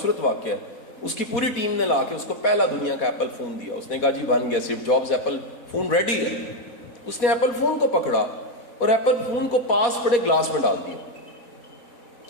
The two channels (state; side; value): late; right; 4.1 ms